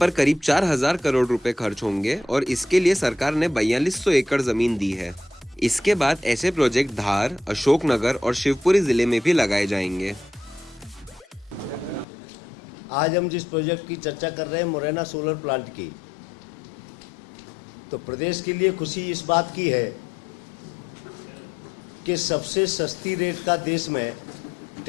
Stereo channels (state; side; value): drops out; right; at 12.1 s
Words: करीब 4,000 करोड़ रुपए खर्च होंगे और इसके लिए सरकार ने 4200 एकड़ जमीन दी है। इसके बाद ऐसे प्रोजेक्ट धार, अशोकनगर और शिवपुरी जिले में भी लगाए जाएंगे। आज हम जिस प्रोजेक्ट की चर्चा कर रहे हैं, मुरैना सोलर प्लांट की, तो प्रदेश के लिए खुशी इस बात की है कि सबसे सस्ती रेट का देश में